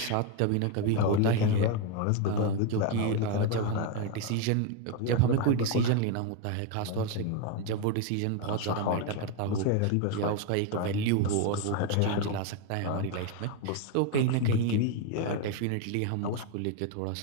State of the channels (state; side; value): different; both; correlation 0.01